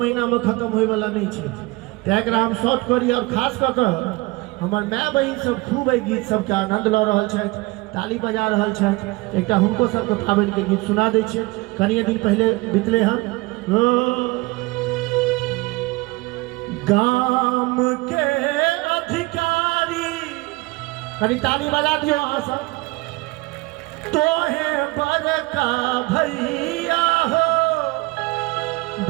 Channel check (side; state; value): left; quieter; 22.8 dB